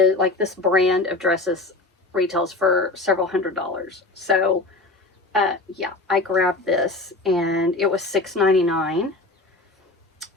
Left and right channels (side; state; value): right; quieter; 3.1 dB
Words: like this brand of dresses, retails for several $100s. So yeah, I grabbed this and it was $6.99.